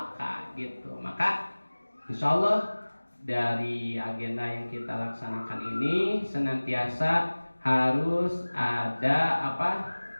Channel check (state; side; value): inverted; both; correlation -1.00